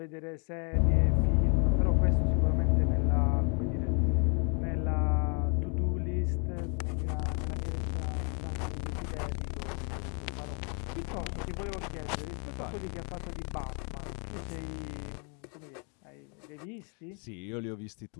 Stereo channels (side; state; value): right; quieter; 37.4 dB